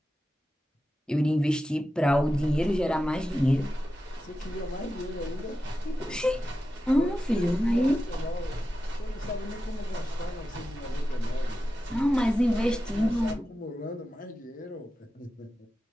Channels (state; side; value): normal; both; correlation 0.92